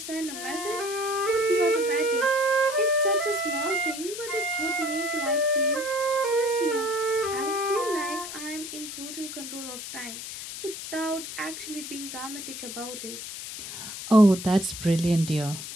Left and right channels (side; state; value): left; noise; hiss, 9 dB below the sound